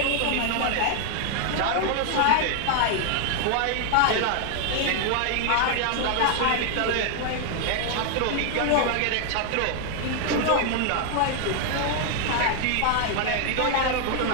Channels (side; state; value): both; different; correlation 0.00